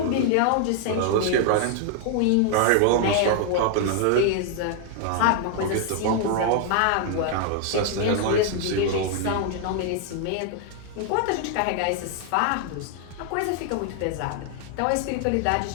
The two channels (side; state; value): both; different; correlation 0.00